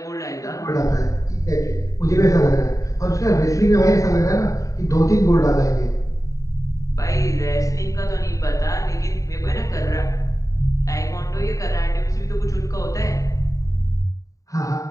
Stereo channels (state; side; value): late; right; 0.16 ms